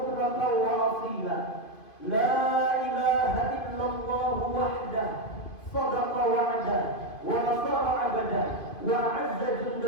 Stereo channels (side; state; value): right; late; 2.5 ms